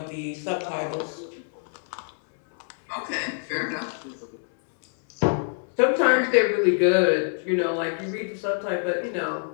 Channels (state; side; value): silent; right; 61 dB below the other